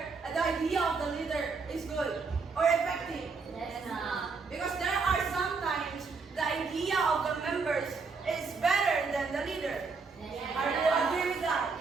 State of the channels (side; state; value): left; quieter; 4.7 dB